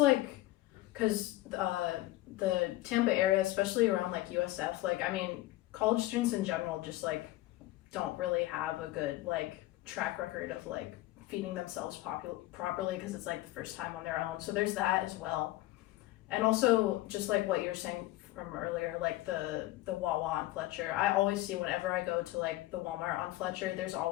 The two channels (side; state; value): right; quieter; 17.3 dB